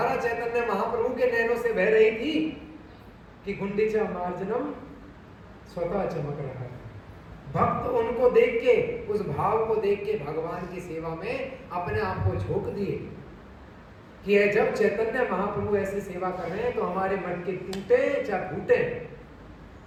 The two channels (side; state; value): both; identical; correlation 1.00